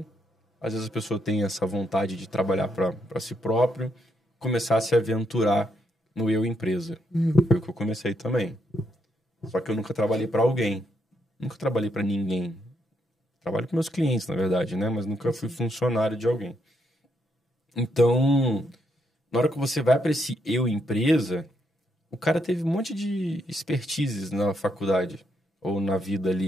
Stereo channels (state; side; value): normal; both; correlation 0.77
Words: Às vezes a pessoa tem essa vontade de trabalhar para si próprio, começar a se aventurar no eu empresa. Foi o que eu comecei também. Só que eu nunca trabalhei para alguém. Nunca trabalhei para ninguém. Trabalho com meus clientes, na verdade, né? Mas nunca fui funcionário de alguém. Então, na hora que você vai para esse eu empresa, o cara teve um monte de expertises na faculdade ou na vida